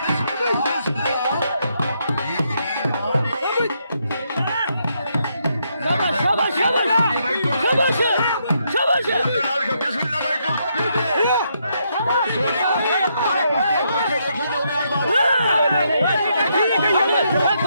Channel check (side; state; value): both; inverted; correlation -0.77